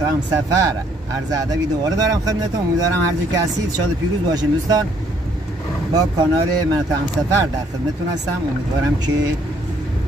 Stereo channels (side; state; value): both; normal; correlation 0.66